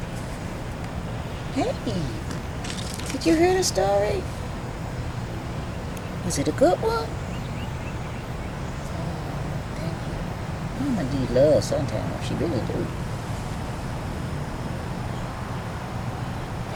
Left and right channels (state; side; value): identical; both; correlation 1.00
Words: Hey, did you hear the story? Was it a good one? Mama need love sometimes. She really do.